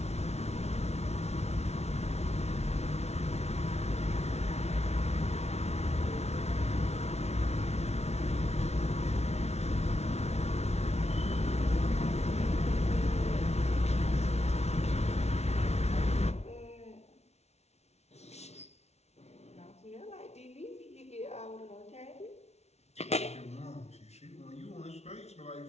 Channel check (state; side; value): late; right; 0.31 ms